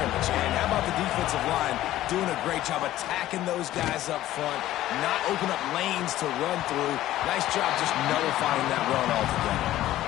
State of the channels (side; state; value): right; quieter; 14.3 dB